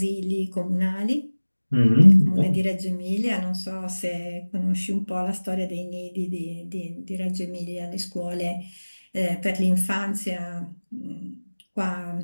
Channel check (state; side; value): inverted; both; correlation -1.00